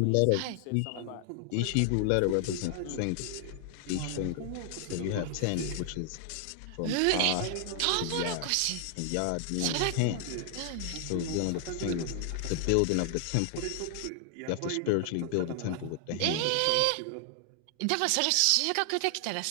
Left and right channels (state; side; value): different; both; correlation 0.00